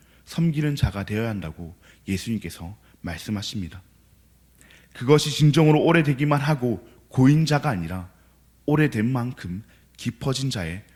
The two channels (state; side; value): identical; both; correlation 1.00